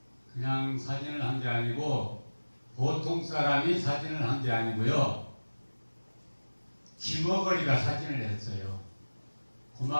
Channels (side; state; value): both; inverted; correlation -1.00